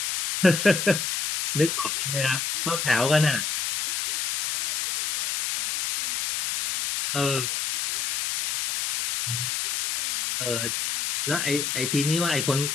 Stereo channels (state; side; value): noise; left; hiss, 2 dB below the sound